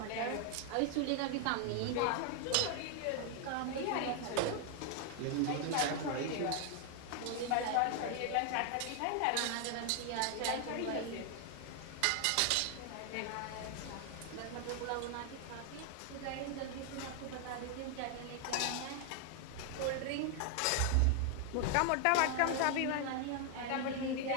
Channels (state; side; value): different; both; correlation 0.00